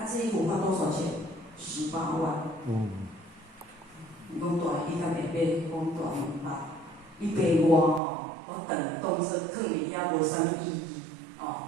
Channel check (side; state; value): left; drops out; at 8.0 s